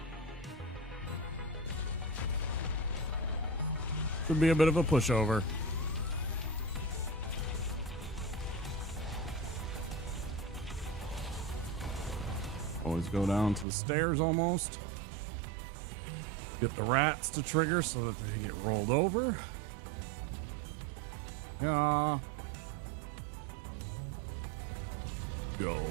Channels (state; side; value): drops out; left; at 13.7 s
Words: Should be a bit of a pushover. Always go down to the stairs almost. Get the rats to trigger so that they get rolled over. Yeah.